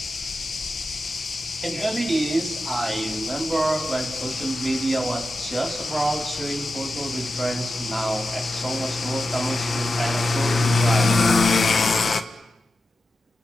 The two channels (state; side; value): normal; both; correlation 0.91